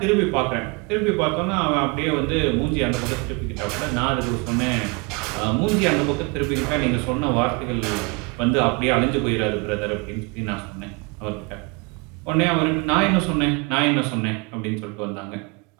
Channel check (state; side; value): quieter; left; 29.5 dB